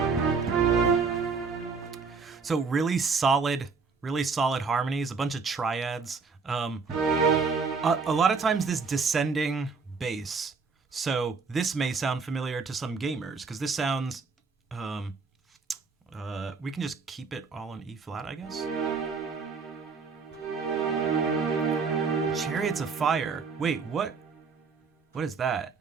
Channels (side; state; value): left; quieter; 4.9 dB